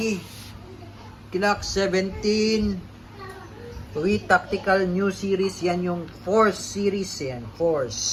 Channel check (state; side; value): identical; both; correlation 1.00